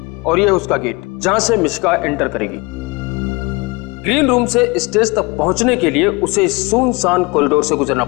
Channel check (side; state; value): right; quieter; 25.6 dB